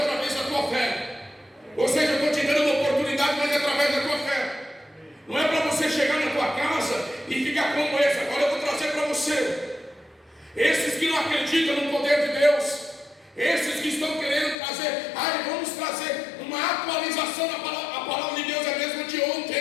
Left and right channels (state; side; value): drops out; right; at 14.6 s